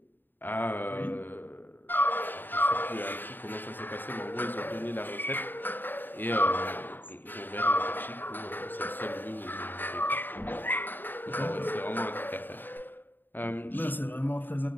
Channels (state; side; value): late; right; 0.092 ms